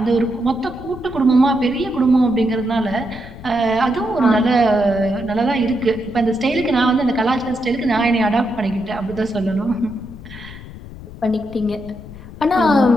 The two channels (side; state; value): left; noise; rumble, 15 dB below the sound